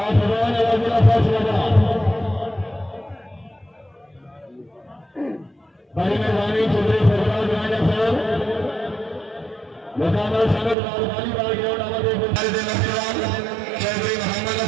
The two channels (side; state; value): left; drops out; at 10.8 s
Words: रन अगला फैसला बना। बड़ी मेहरबानी चौधरी सरफराज राजा साहब मुकाबला संगत राजधानी बाल ग्राउंड आवाज चौधरी मोहम्मद